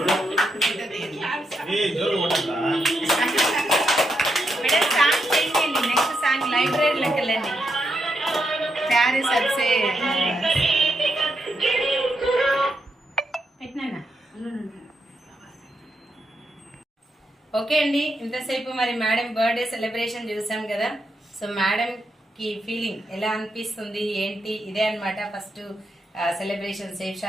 మేడం సాంగ్ చేయండి, నెక్స్ట్ సాంగ్ లైబ్రరీలోకి వెళ్ళండి. ప్యారిస్ అర్సే పెట్టినా. ఓకే అండి, ఇంతసేపు మరి మేడం బర్త్డే సెలబ్రేషన్ చూసాం కదా. సో మేడం కి ఫీలింగ్ ఎలా అనిపిస్తుంది ఏంటి, ఇదే అన్నమాట first celebration safe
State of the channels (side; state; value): both; normal; correlation 0.82